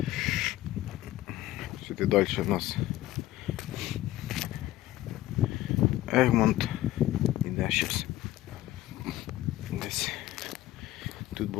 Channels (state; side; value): quieter; right; 15.3 dB